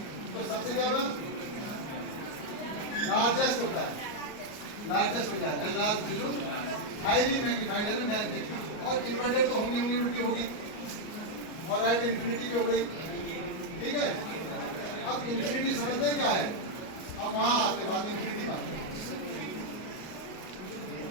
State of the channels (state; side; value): late; right; 38 ms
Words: तो सबसे क्या होगा, लार्जेस्ट होता है, लार्जेस्ट हो जाएगा, हाईली मैग्नीफाइड है ना। और इन्वर्टेड तो होंगी होंगी, उल्टी होगी, और एट इन्फिनिटी पे हो गई, ठीक है। अब इन्फिनिटी समझते हैं क्या है, अब वहां आके बाद इन्फिनिटी बात है।